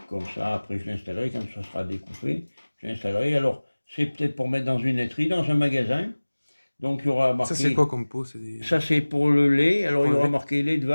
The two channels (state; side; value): inverted; both; correlation -1.00